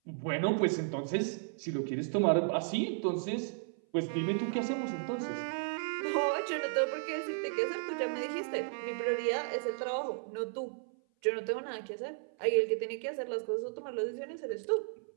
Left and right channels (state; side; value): silent; left; 55 dB below the other